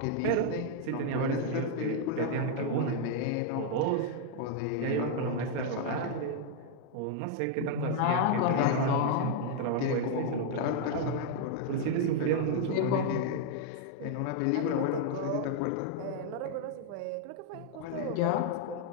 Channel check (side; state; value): both; different; correlation 0.00